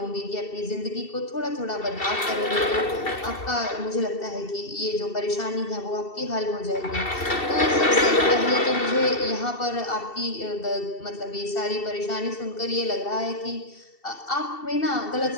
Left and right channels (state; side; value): late; right; 2.7 ms